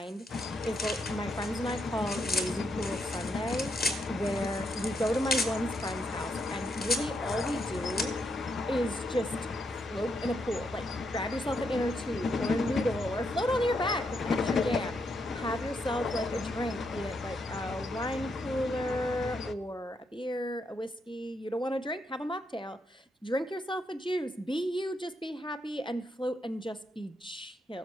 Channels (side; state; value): both; normal; correlation 0.79